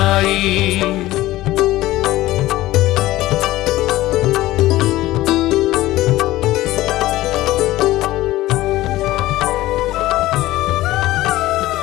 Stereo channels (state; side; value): quieter; right; 16.7 dB